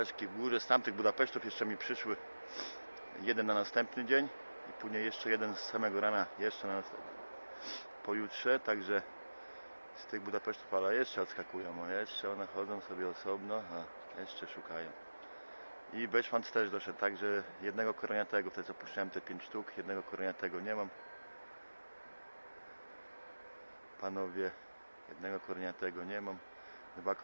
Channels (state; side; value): inverted; both; correlation -1.00